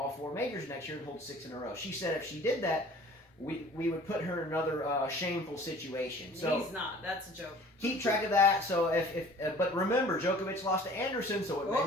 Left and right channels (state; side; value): normal; both; correlation 0.48